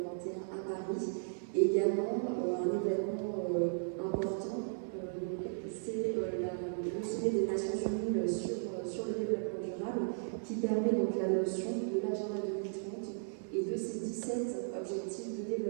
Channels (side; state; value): left; silent; digital silence